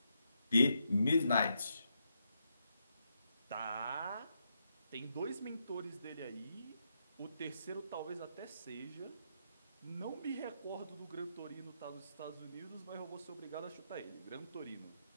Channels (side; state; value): both; inverted; correlation -0.81